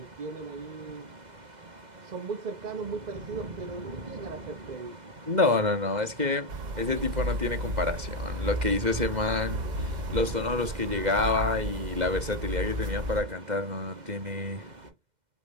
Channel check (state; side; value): late; left; 2.0 ms